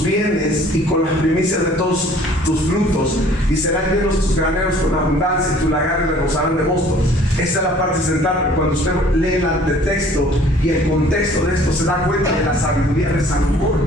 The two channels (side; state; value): both; normal; correlation 0.54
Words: bienes y con las primicias de todos tus frutos, y serán llenos tus graneros con abundancia, y tus lagares rebosarán de mosto. Esa es la parte central, pero cuando usted lee el texto y el contexto de esto, se da cuenta de la sabiduría de